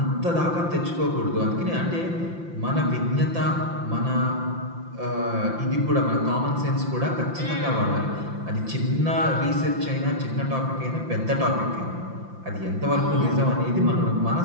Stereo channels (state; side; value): late; left; 5.8 ms